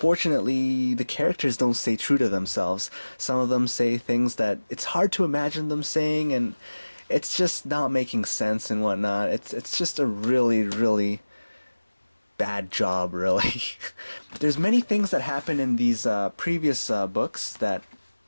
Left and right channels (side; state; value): both; inverted; correlation -1.00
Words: the characters don't stay true to themselves. Some of them say things that it's hard to imagine them saying, and it's just not making sense and whatnot. It's just a really, really bad job, really. There's many things that happen in these previous books that